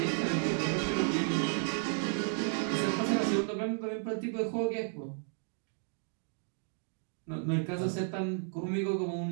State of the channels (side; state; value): left; silent; 56 dB below the other